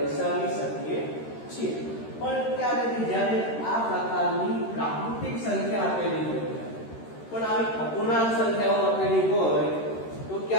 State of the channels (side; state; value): right; late; 13 ms